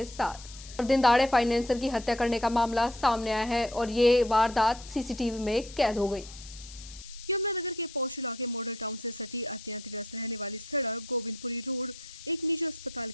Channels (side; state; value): left; noise; hiss, 16 dB below the sound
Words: साथ। और दिन दहाड़े फाइनेंसर की हत्या करने का मामला सामने आया है और ये वारदात सीसीटीवी में कैद हो गई। यमुनानगर के पौष इलाके मॉडल टाउन से सटी अत्यंत व्यस्त रहने वाली सड़क गोविंदपुरी रोड एक निजी अस्पताल